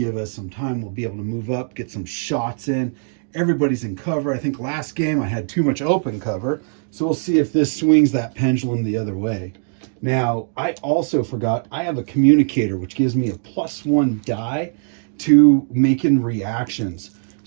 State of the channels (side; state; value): left; silent; digital silence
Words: us some time. We'll be able to move up, get some shots in. Everybody's in cover. I think last game I had too much open cover. So we'll see if this swings that pendulum the other way. Now, I also forgot, I have a communicator, which gives me a +1 die to making reactions.